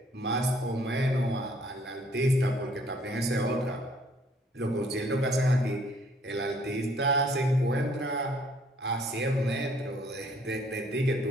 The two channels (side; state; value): both; normal; correlation 0.62